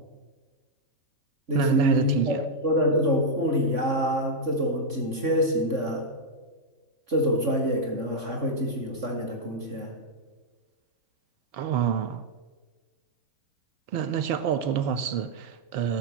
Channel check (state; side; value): late; left; 3.6 ms